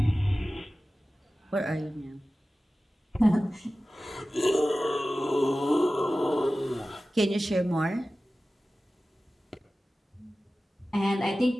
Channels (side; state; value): both; normal; correlation 0.96